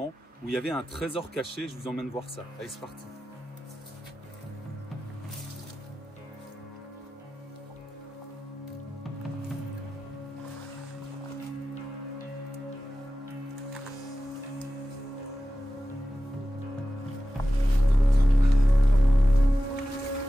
où il y avait un trésor caché. Je vous emmène voir ça. Allez, c'est parti.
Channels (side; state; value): both; normal; correlation 0.94